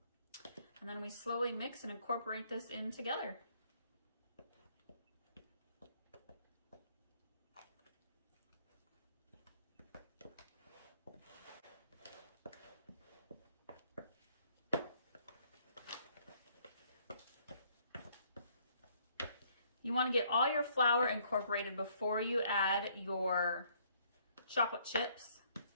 then we slowly mix and incorporate this in together. You want to get all your flour incorporated before you add your chocolate chips.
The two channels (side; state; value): both; inverted; correlation -0.65